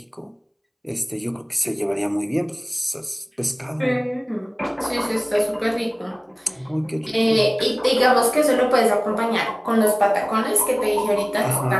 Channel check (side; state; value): both; identical; correlation 1.00